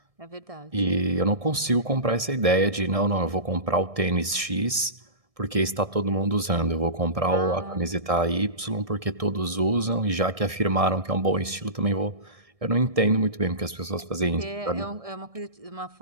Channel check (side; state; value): left; late; 1.6 ms